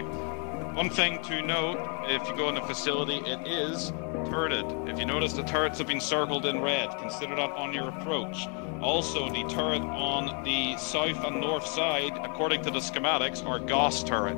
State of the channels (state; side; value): quieter; right; 37.5 dB